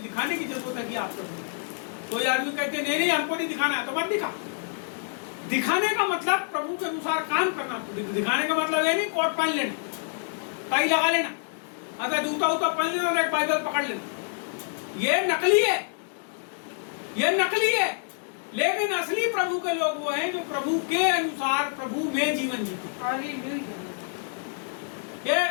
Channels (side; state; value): right; silent; digital silence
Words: की जरूरत है कि आप प्रभु में। कोई आदमी कहते नहीं हमको नहीं दिखाना है, तो मत दिखा। दिखाने का मतलब प्रभु के अनुसार काम करना। दिखाने का मतलब ये नहीं कोट पहन लेना, टाई लगा लेना, अगर जूता उता पहन लेना और एक बाइबल पकड़ लेना। ये नकली है, ये नकली है। लेकिन असली प्रभु के लोग वो हैं जो प्रभु के अनुसार प्रभु में जीवन जीते। ये